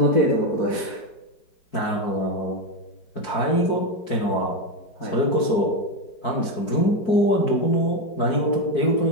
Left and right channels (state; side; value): late; right; 4.6 ms